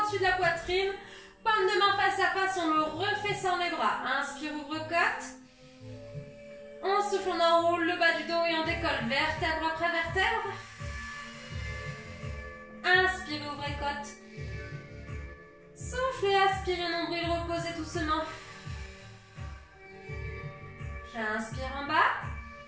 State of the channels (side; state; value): both; identical; correlation 1.00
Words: au-dessus de la poitrine. Paume de main face à face, on me refait sans les bras. Inspire, ouvre côte. On souffle, on enroule le bas du dos et on décolle. Vertèbre après vertèbre. Inspirez, ouvrez côte. Soufflez, aspirez, nombril, reposez doucement. J'inspire en bas.